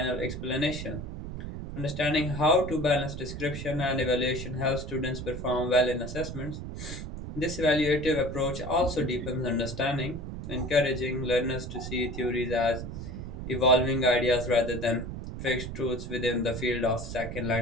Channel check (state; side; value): noise; right; rumble, 8 dB below the sound